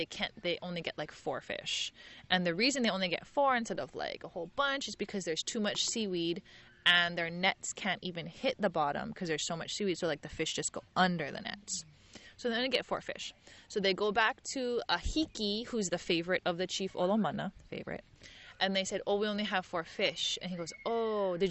can't. They only get like 4 fish. And the reason they only get 4 instead of like a whole bunch is because there's too much seaweed, and their nets can't even hit the bottom because there's so much seaweed. So like the fish just go under the nets. So they only get 4 fish. So they go back to Ahiki, who's the favorite of the chief Olomana, favorite. And they said, oh, we only have 4 fish. And he goes, oh,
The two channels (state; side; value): identical; both; correlation 1.00